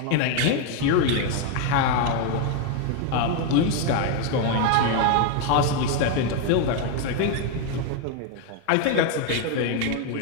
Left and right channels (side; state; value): both; different; correlation 0.01